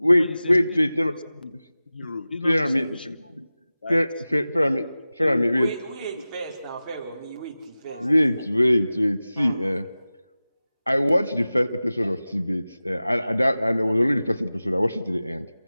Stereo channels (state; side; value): inverted; both; correlation -0.96